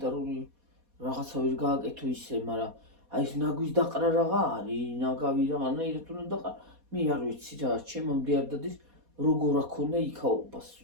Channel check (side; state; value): left; late; 4.2 ms